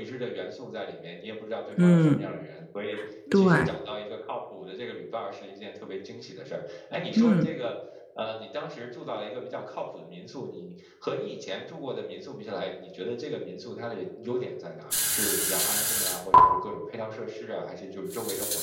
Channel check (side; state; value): both; identical; correlation 1.00